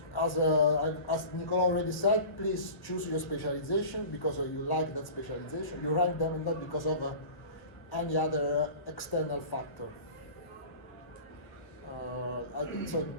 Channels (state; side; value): late; right; 1.3 ms